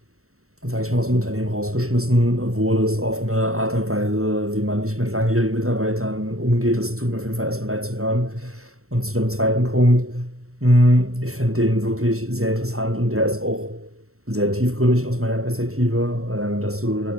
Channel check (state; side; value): late; left; 0.63 ms